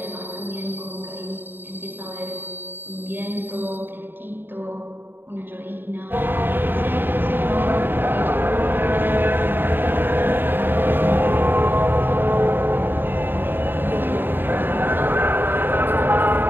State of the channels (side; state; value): left; late; 0.096 ms